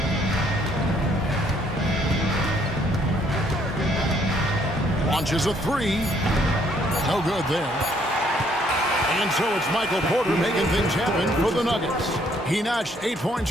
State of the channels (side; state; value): both; normal; correlation 0.66